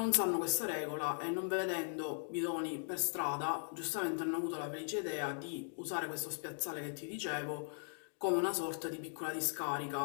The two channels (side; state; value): right; silent; digital silence